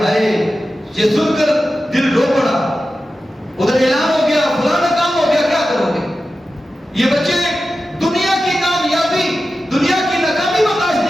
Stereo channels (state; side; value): normal; both; correlation 0.93